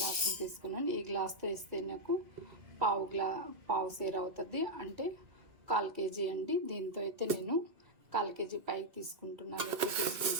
తీసుకున్నాను. ఈ గ్లాస్తో వేస్తే నాకు పావు సేర అవుతుంది, అంటే 1/4 కేజీ అండి. దీంతో అయితే నేను 1/4 కేజీ పైకి తీసుకుంటున్నాను, ఎక్కువ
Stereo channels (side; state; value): left; late; 2.3 ms